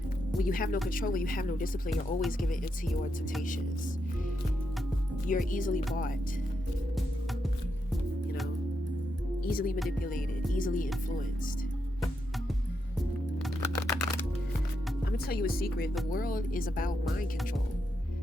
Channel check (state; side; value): normal; both; correlation 0.83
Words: When you have no control, when you have no discipline, you're always giving into your temptations. You're easily bought, you know, easily manipulated, easily influenced. I'm gonna tell you a secret. The world is about mind control.